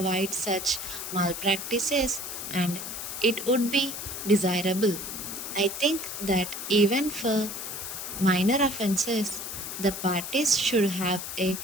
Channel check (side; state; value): left; noise; hiss, 7 dB below the sound